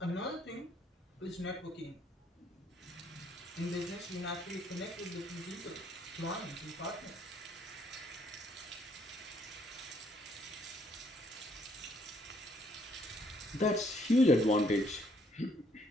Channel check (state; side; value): normal; both; correlation 0.67